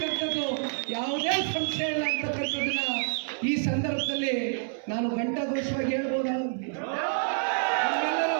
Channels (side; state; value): left; silent; 59 dB below the other